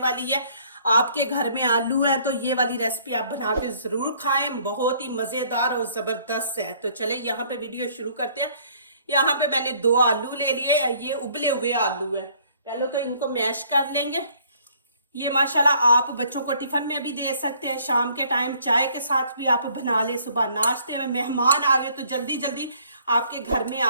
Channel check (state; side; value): inverted; both; correlation -0.60